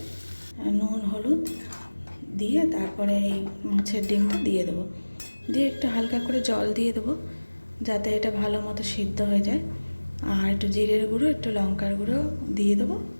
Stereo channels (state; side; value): inverted; both; correlation -1.00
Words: নুন হলুদ দিয়ে তারপরে এই মাছের ডিমটা দিয়ে দেবো। দিয়ে একটু হালকা করে জল দিয়ে দেবো, যাতে এটা ভালো মতো সিদ্ধ হয়ে যায়। আর একটু জিরের গুঁড়ো, একটু লঙ্কার গুঁড়ো দিয়ে দেবো।